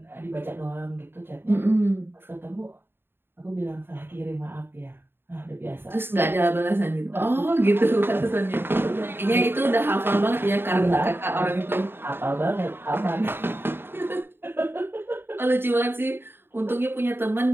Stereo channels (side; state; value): left; late; 0.11 ms